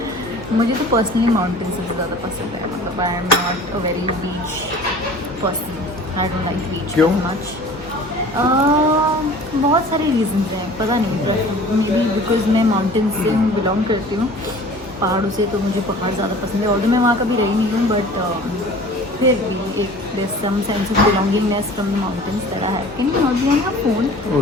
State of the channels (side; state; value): both; normal; correlation 0.44